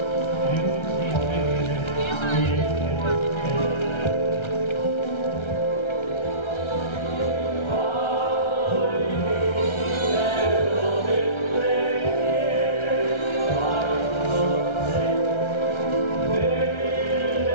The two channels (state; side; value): late; right; 1.3 ms